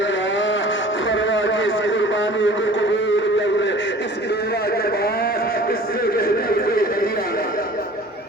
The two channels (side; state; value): both; normal; correlation 0.45